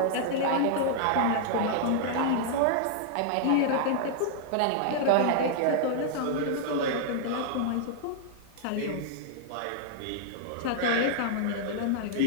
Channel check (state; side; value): different; both; correlation -0.01